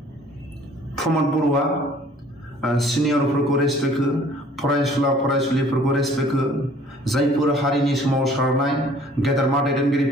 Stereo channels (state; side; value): normal; both; correlation 0.54